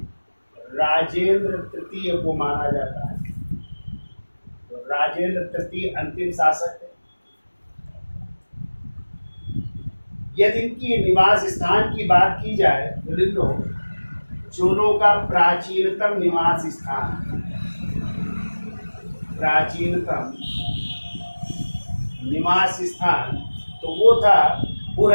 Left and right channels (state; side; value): inverted; both; correlation -1.00